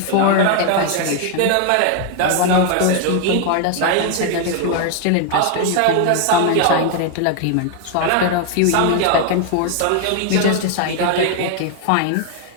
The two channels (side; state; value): both; different; correlation 0.00